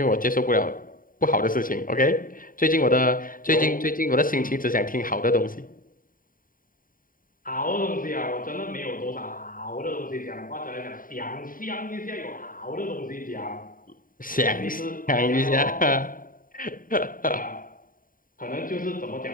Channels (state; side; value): late; right; 0.41 ms